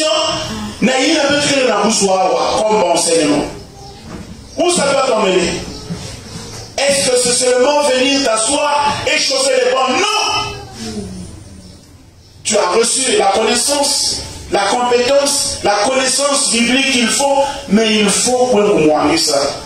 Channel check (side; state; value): both; identical; correlation 1.00